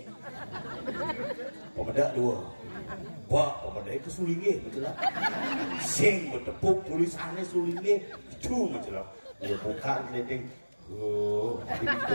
pemedak dua pemedak itu Sulinge betul lah sing bertepuk tulisannya Sulinge itu betul lah dia buka keleding itu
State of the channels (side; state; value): both; inverted; correlation -1.00